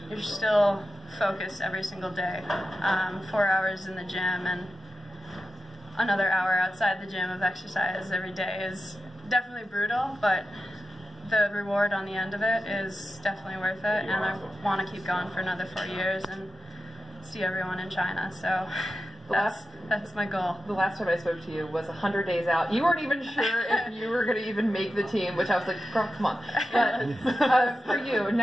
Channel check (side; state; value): both; normal; correlation 0.92